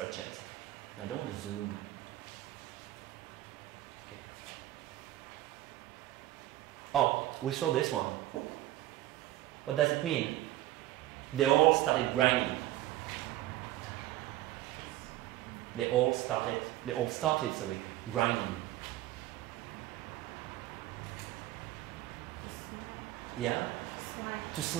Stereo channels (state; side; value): quieter; left; 15.3 dB